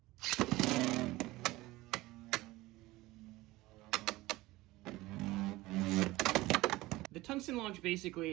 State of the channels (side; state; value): left; quieter; 19.2 dB